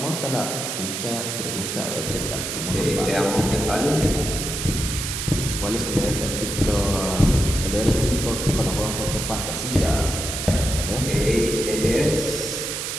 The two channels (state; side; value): noise; right; hiss, 4 dB below the sound